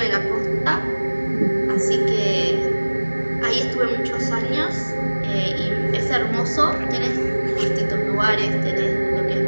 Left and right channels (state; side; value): inverted; both; correlation -1.00